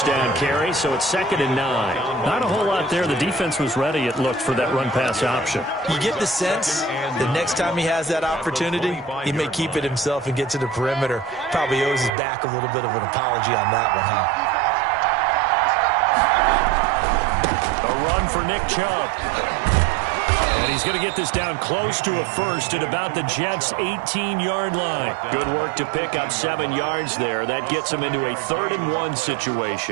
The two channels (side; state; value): left; drops out; at 12.1 s